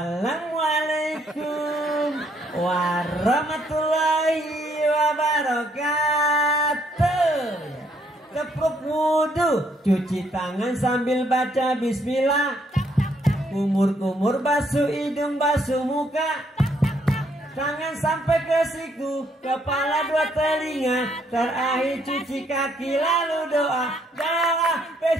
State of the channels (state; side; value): normal; both; correlation 0.70